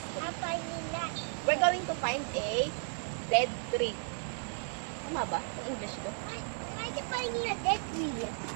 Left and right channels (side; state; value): left; silent; 55 dB below the other